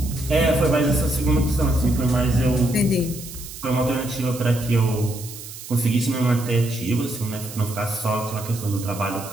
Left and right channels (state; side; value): noise; right; hiss, 13 dB below the sound